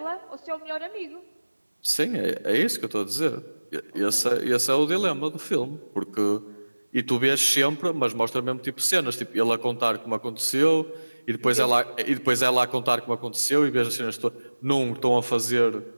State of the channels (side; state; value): both; inverted; correlation -1.00